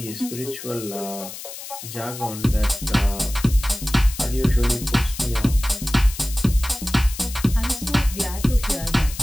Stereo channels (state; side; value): noise; left; hiss, 11 dB below the sound